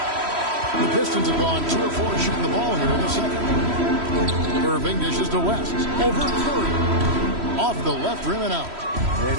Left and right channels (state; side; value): late; left; 3.1 ms